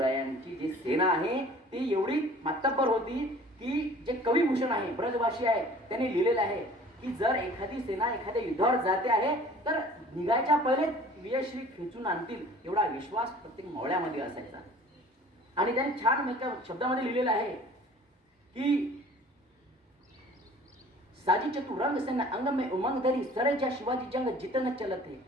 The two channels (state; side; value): normal; both; correlation 0.48